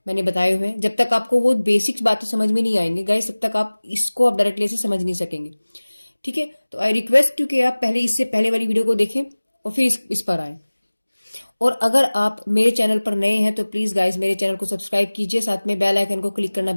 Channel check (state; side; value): inverted; both; correlation -1.00